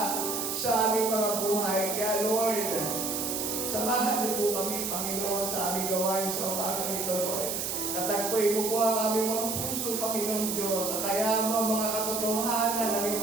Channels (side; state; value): right; noise; hiss, 2 dB below the sound